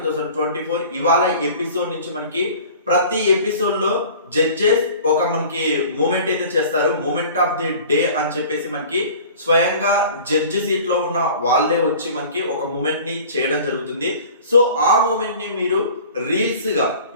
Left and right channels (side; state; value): both; inverted; correlation -0.44